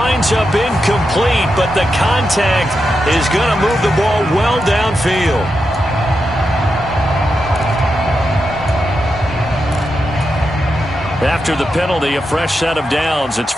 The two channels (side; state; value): both; normal; correlation 0.87